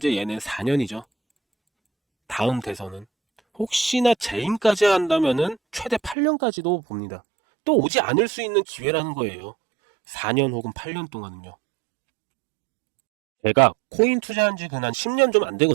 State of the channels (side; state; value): left; drops out; at 6.2 s